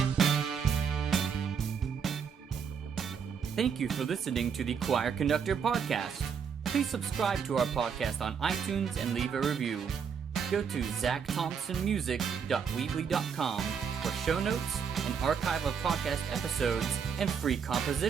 Thank you for listening to the Choir Conductor Podcast. Please subscribe to our podcast on iTunes and leave a review. Go to zachthompsonmusic.weebly.com for show notes, an archive of podcast episodes, and free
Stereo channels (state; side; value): quieter; left; 6.8 dB